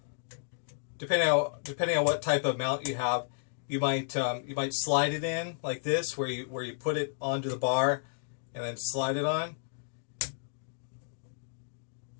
Depending on what type of mount you have, you might slide it in like this, where you put it onto the bar and then slide it on.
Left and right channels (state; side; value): silent; right; digital silence